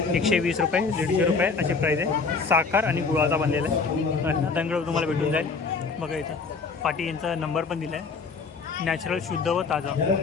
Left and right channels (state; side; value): quieter; right; 4.7 dB